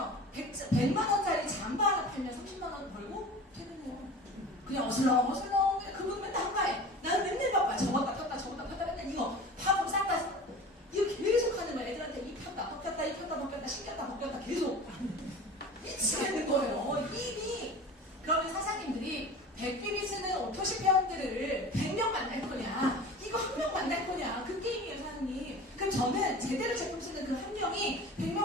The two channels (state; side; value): normal; both; correlation 0.37